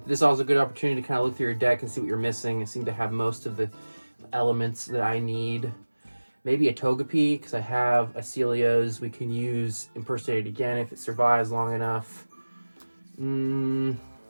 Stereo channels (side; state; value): both; inverted; correlation -1.00